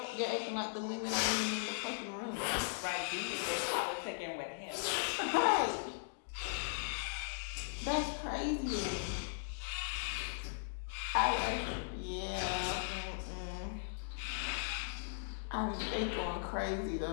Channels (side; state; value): right; silent; digital silence